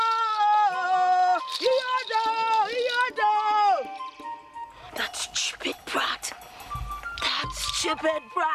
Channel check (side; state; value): both; identical; correlation 1.00